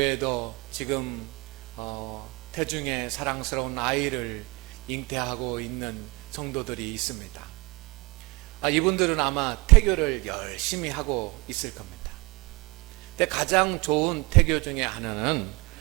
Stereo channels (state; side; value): quieter; left; 26.7 dB